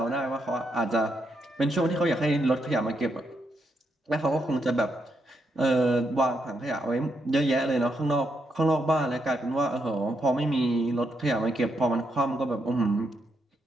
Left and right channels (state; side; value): normal; both; correlation 0.80